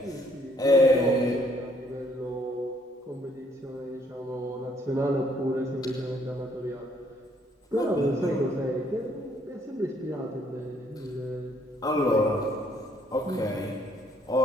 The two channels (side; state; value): both; normal; correlation 0.66